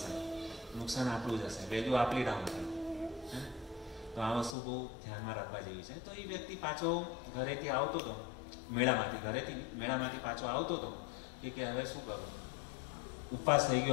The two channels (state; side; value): drops out; right; at 4.5 s